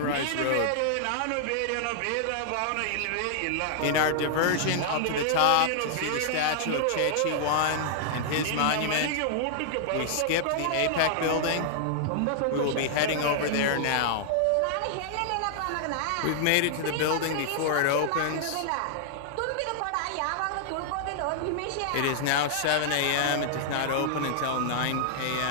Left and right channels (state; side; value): different; both; correlation -0.01